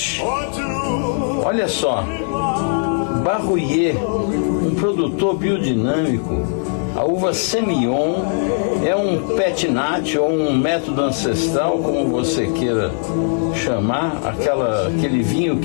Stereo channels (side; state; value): right; silent; 67 dB below the other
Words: Olha só, Barruyer, um produtor biodinâmico. A uva Semillon é um petinat ou um método ancestral, como você queira chamar, aquele vinho